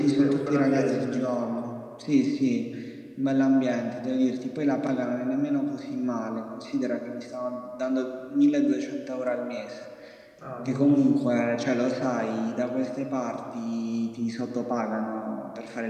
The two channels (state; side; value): identical; both; correlation 1.00